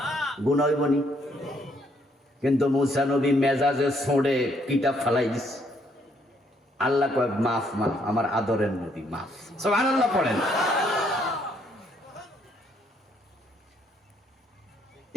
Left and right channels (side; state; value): both; normal; correlation 0.70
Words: গুনাহ হইব নি? কিন্তু মুসা নবী মেজাজে ছোঁড়ে কিতাব ফালাই দিছে। আল্লাহ কয়, মাফ মাফ, আমার আদরের নবী মাফ। সুবহানাল্লাহ পড়েন।